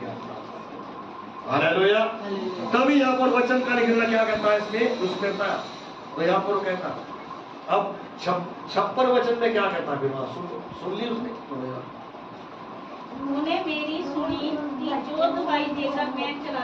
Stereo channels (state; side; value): identical; both; correlation 1.00